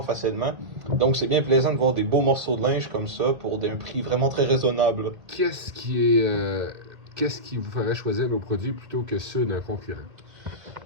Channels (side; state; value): left; late; 2.3 ms